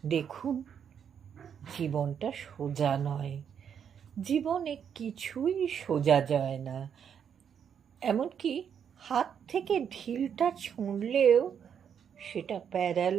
দেখুন, জীবনটা সোজা নয়, জীবনে কিছুই সোজা যায় না। এমনকি হাত থেকে ঢিলটা ছুঁড়লেও সেটা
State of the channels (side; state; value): left; quieter; 7.9 dB